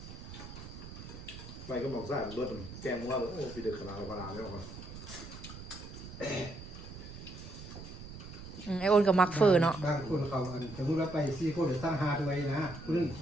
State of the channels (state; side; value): noise; right; rumble, 13 dB below the sound